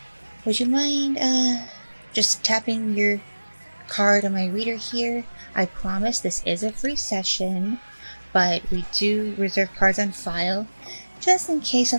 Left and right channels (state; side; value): inverted; both; correlation -1.00